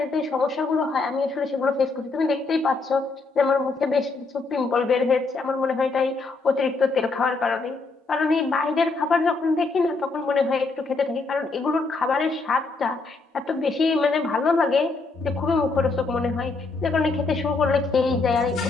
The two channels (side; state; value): right; quieter; 3.8 dB